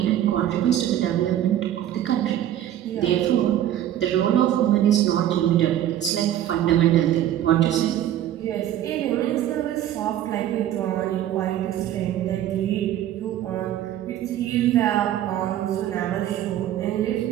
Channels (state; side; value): quieter; left; 11.8 dB